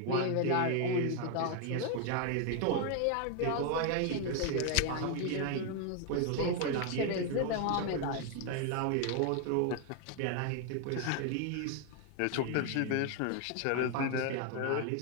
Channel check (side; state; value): both; different; correlation 0.00